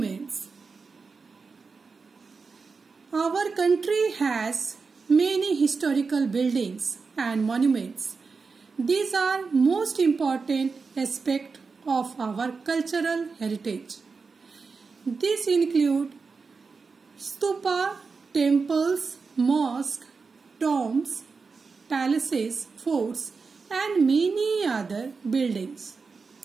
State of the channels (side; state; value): left; quieter; 4.7 dB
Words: Our country has many historical buildings and monuments. These are most important aspects of our cultural heritage. These include stupa, temples, mosques, tombs, palaces, forts, and many other buildings.